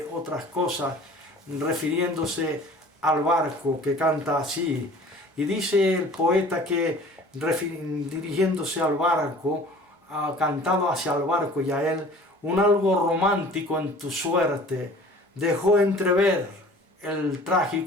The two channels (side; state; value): both; normal; correlation 0.46